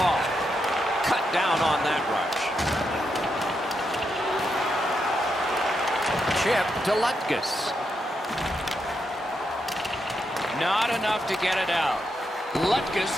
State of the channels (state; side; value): normal; both; correlation 0.83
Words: Cut down on that rush. Chip to Lutkus. Not enough to get it out.